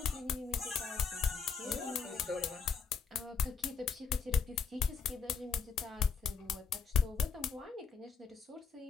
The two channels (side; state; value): right; quieter; 5.8 dB